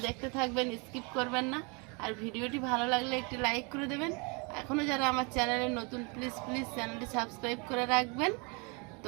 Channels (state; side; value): quieter; left; 32.2 dB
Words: দেখতে থাকবেন, স্কিপ করবেন না। আর ভিডিওটি ভালো লাগলে একটি লাইক করে দেবেন। এখনও যারা আমার চ্যানেলে নতুন, প্লিজ চ্যানেলটি সাবস্ক্রাইব করে রাখবেন।